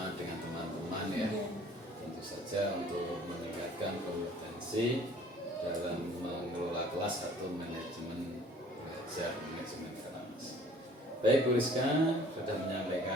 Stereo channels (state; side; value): normal; both; correlation 0.53